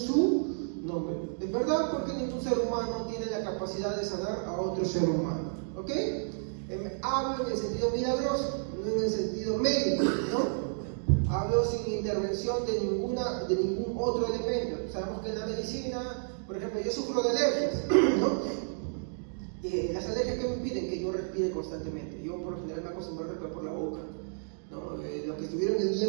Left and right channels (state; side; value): silent; left; digital silence